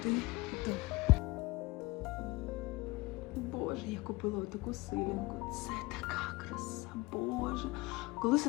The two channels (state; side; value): quieter; right; 21.2 dB